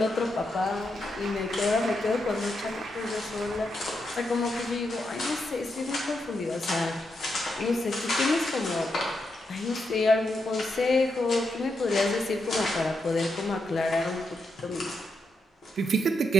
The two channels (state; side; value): normal; both; correlation 0.83